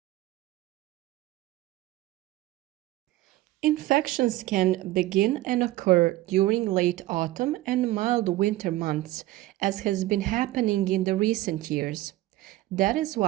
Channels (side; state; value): left; quieter; 16.6 dB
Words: Infections can begin and occur during late autumn and mild winter months, as has been happening in the recent years. That is